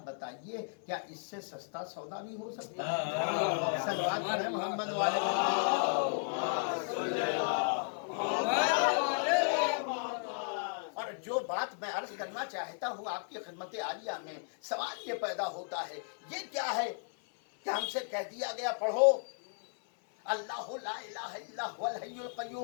बताइए, क्या इससे सस्ता सौदा भी हो सकता है? सलवात पढ़े मोहम्मद वाले। और जो बात मैं अर्ज करना चाहता हूँ आपकी खिदमत आलिया में, सवाल ये पैदा होता है, ये क्या है कि हमसे कह दिया गया पढ़ो अल्लाह ला इलाहा इल्ला हुवल हय्युल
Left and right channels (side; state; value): right; silent; 55 dB below the other